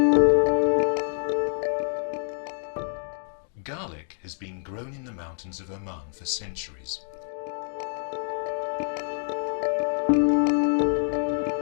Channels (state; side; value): silent; right; 60 dB below the other